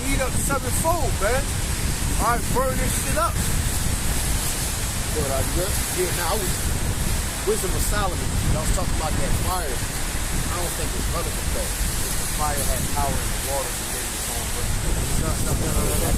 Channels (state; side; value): identical; both; correlation 1.00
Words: heat up sevenfold, man. All right, burn this shit up. Good, are you good? Yeah, now Wisdom of Solomon, I was talking about that fire. I don't think it's relevant though. The fire had power in the water to get its own burn. No.